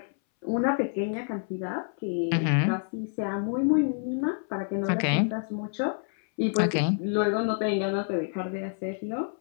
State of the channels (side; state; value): right; silent; 59 dB below the other